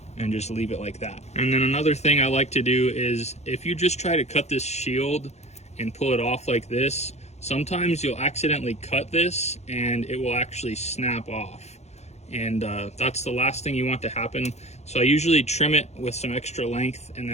and just leave it like that. And then another thing I like to do is if you just try to cut this shield and pull it off like this, Sometimes you'll accidentally cut this and it will actually snap off, and that's the last thing you want to happen. So I usually trim it with some extra length, and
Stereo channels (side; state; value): right; late; 0.32 ms